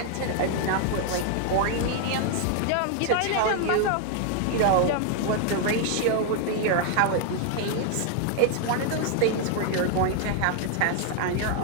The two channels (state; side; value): different; both; correlation 0.00